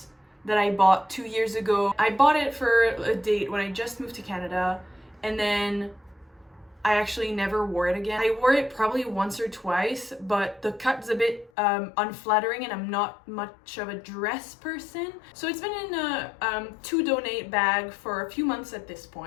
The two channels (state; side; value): drops out; right; at 11.5 s